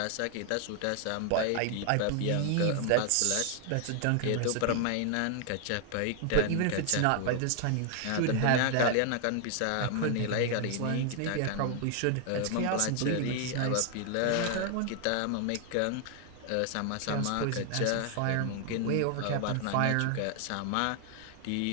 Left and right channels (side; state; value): both; different; correlation 0.00